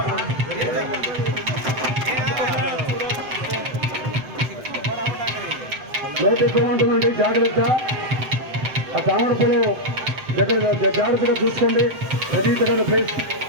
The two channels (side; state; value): left; late; 7.9 ms